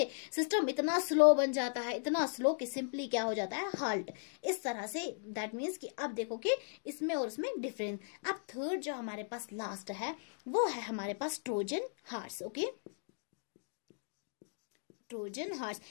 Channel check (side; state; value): right; silent; digital silence